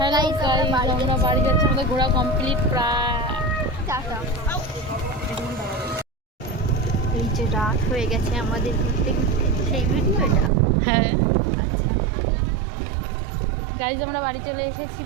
গাইজ, আমরা বাড়ি যাচ্ছি, আমাদের ঘোরা কমপ্লিট প্রায়। এই যে রাত হয়ে গেছে আমাদের ঘুরতে ঘুরতে, সেই ভিডিও এটা। হ্যাঁ আচ্ছা, গাইজ আমরা বাড়ি চলে এসেছি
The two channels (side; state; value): left; drops out; at 10.5 s